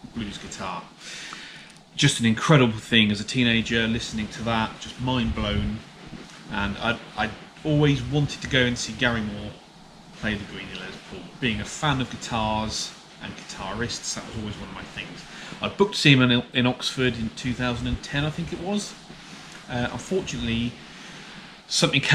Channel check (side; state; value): both; identical; correlation 1.00